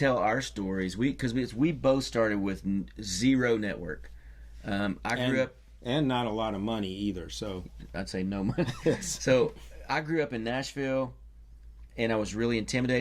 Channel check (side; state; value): both; identical; correlation 1.00